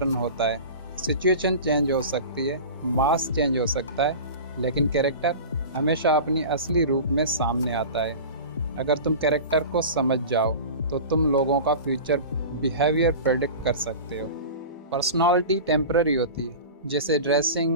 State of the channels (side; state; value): both; inverted; correlation -0.34